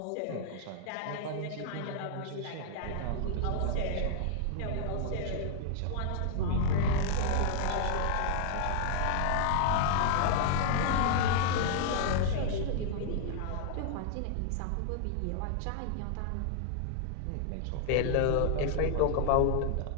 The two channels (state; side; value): different; both; correlation -0.01